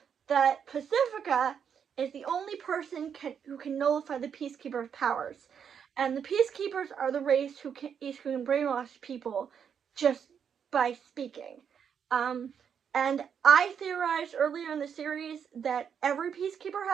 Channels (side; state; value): left; quieter; 7.6 dB